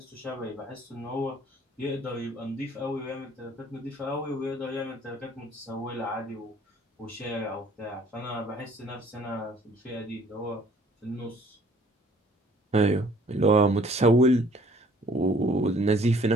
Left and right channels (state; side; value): normal; both; correlation 0.56